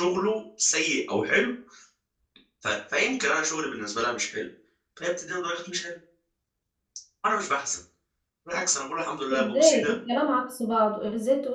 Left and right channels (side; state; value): both; identical; correlation 1.00